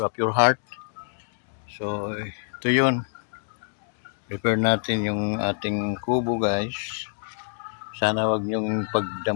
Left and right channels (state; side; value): silent; right; digital silence